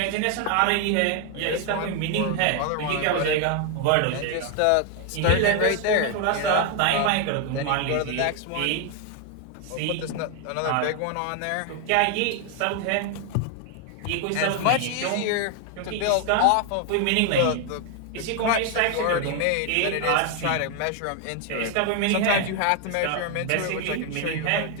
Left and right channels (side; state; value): both; different; correlation 0.01